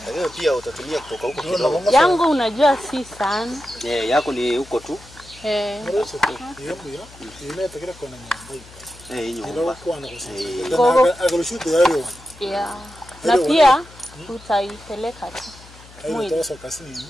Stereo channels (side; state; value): left; noise; hum, 21 dB below the sound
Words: Leo pia utatumia kutoka huko kidogo. yangu, unajua si sana. Yako ni huko tu. Yeah. Na pia utaipeleka tu. Mwili.